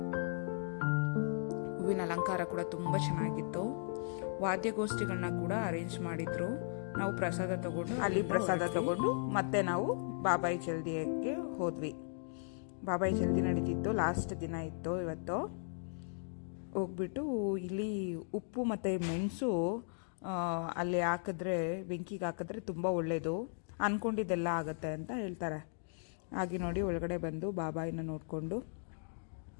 ಹೂವಿನ ಅಲಂಕಾರ ಕೂಡ ತುಂಬಾ ಚೆನ್ನಾಗಿತ್ತು. ವಾದ್ಯಗೋಷ್ಠಿಗಳನ್ನ ಕೂಡ ಅರೇಂಜ್ ಮಾಡಿದ್ರು. ನಾವು ಪ್ರಸಾದ ತಗೊಂಡು ಮತ್ತೆ ನಾವು ಬಾಬಾಯಿ ಜಲ್ದಿಗೆ ಹೋದ್ವಿ. ಬಾಬಾಯಿ ಜಲ್ದಿ ನಡೀತಿತ್ತು, ಲಾಸ್ಟ್ ದಿನ ಇತ್ತು ಇವತ್ತು. ಹೋಗ್ಬಿಟ್ಟು ಇಲ್ಲಿ ಉಪ್ಪು ಮತ್ತೆ ಮೆಣಸು ಅಲ್ಲಿ ಹಾಕಿದ್ರೆ, ಬೆಂಕಿಗೆ ಹಾಕಿದ್ರೆ ತುಂಬ ಒಳ್ಳೇದು, ಅನ್ಕೊಂಡಿದ್ದೆಲ್ಲ ಆಗತ್ತೆ ಅಂತ ಹೇಳ್ತಾರೆ. ಹಾಗೆ ನೋಡಿ, ಒಳಗಡೆ ಬಂದು ಬಾಬಾಯಿನ ನೋಡಿಕೊಂಡು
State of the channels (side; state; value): right; silent; digital silence